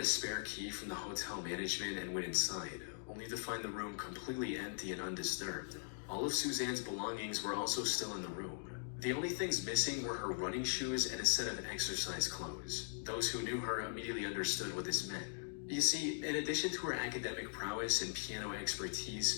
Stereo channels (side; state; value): right; silent; digital silence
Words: spare key from the hotel management and went inside, only to find the room completely empty and undisturbed. All of Suzanne's belongings were also still in the room. The only things missing were her running shoes and a set of exercise clothes. Those who knew her immediately understood what this meant. You see, in addition to her academic prowess and piano